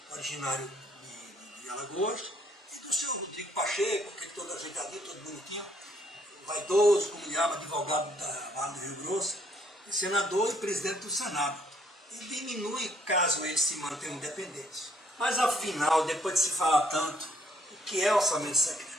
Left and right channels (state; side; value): normal; both; correlation 0.67